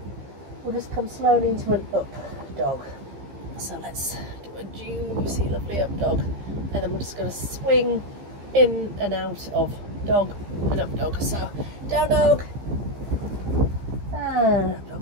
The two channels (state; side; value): late; left; 15 ms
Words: We'll just come slowly into an up dog. So let's do a juicy, lovely up dog. And then we're just going to swing in and out of dog and up dog. So down dog and up